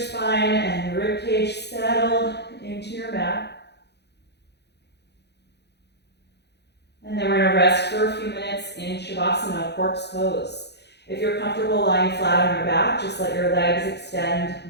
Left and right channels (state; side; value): late; right; 0.49 ms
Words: and ribcage settle into your mat. And then we're going to rest for a few minutes in Shavasana, corpse pose. If you're comfortable lying flat on your back, just let your legs extend